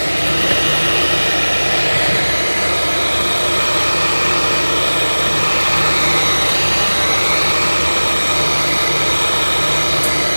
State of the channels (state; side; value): inverted; both; correlation -1.00